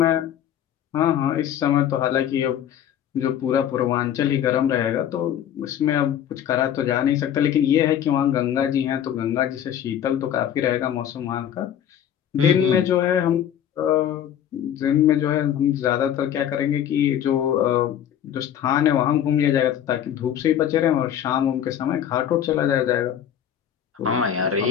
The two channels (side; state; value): right; quieter; 10.0 dB